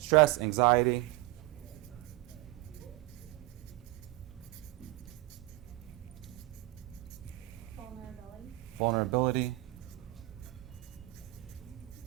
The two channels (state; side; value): quieter; left; 19.5 dB